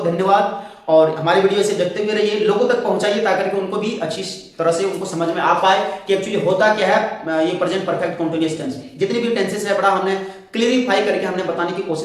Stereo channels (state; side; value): identical; both; correlation 1.00